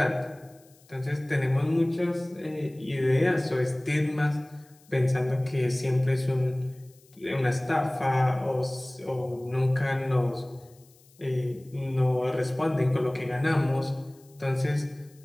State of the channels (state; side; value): noise; left; hiss, 29 dB below the sound